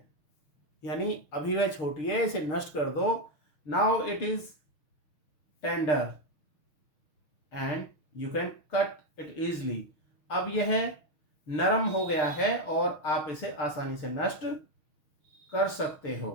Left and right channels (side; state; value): right; late; 6.4 ms